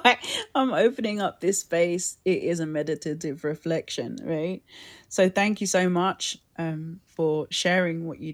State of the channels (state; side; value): identical; both; correlation 1.00